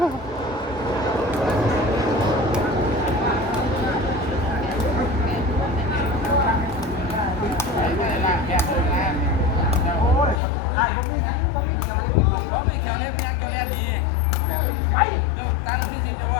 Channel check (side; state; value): right; drops out; at 10.4 s